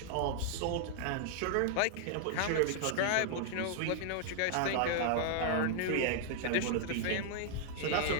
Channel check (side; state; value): both; different; correlation -0.01